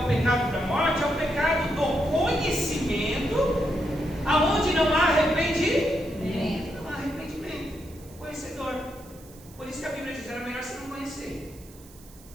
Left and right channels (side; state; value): right; noise; hiss, 23 dB below the sound